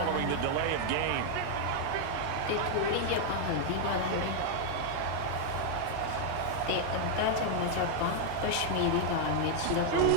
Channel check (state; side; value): different; both; correlation 0.00